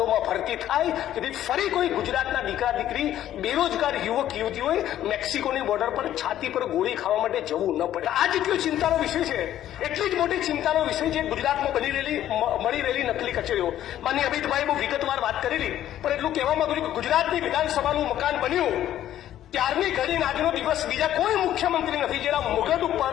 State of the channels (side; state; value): right; quieter; 12.1 dB